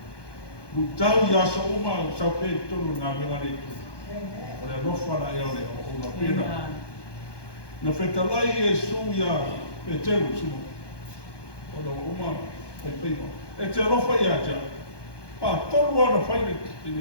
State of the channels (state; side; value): late; right; 1.2 ms